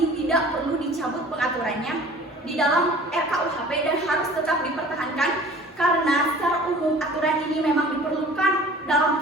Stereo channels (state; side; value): normal; both; correlation 0.46